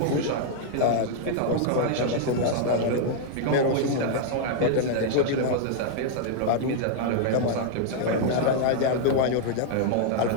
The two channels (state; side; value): different; both; correlation -0.01